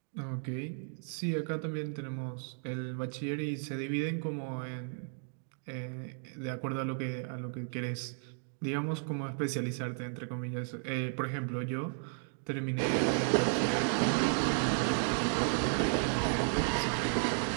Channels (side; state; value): left; silent; 55 dB below the other